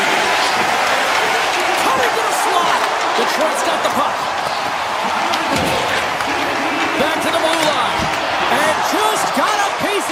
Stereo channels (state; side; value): identical; both; correlation 1.00